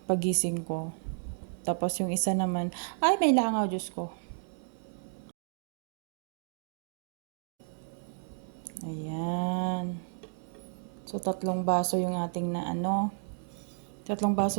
pagising ko. Tapos yung isa naman, ay may langaw, Diyos ko. Ayan. So 3 baso yung ating 3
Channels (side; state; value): left; silent; digital silence